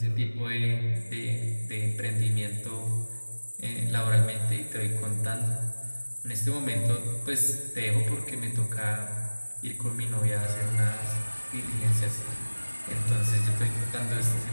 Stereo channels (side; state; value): both; inverted; correlation -1.00